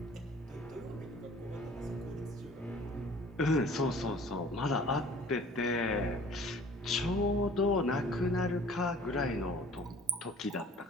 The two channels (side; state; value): both; normal; correlation 0.49